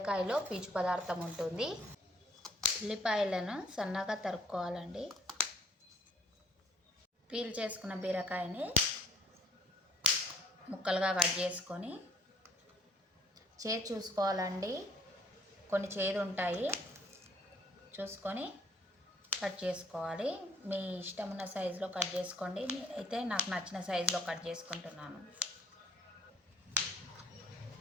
పీచు పదార్థం ఉంటుంది. ఉల్లిపాయలను సన్నగా తరుక్కోవాలండి. పీల్ చేసుకున్న బీరకాయని ముక్కలుగా కట్ చేసుకొని చేదు చూసుకోవాలండి. కొన్ని చేదు ఉంటాయి, చూసుకొని కట్ చేసుకోవాలి. మీ ఇష్టం ఉన్న సైజులో కట్ చేసుకోండి. నేనైతే నాకు నచ్చిన సైజులో కట్ చేసుకుంటున్నాను.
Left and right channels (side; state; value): both; normal; correlation 0.60